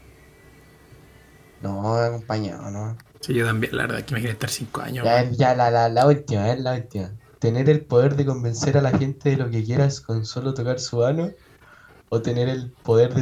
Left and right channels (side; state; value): both; identical; correlation 1.00